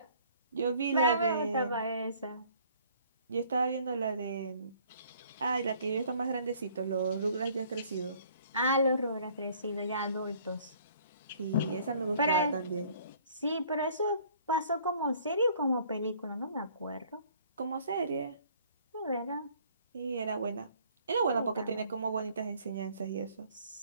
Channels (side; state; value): both; inverted; correlation -0.58